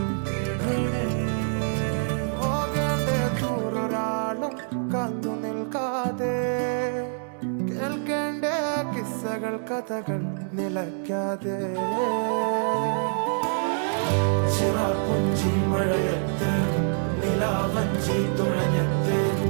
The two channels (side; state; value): left; silent; digital silence